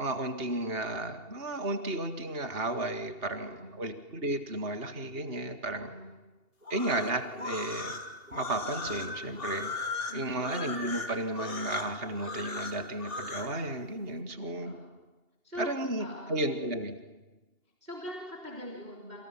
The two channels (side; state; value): left; late; 2.8 ms